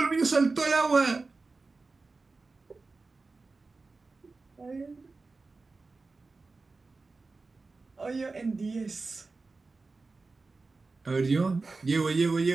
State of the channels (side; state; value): left; quieter; 3.8 dB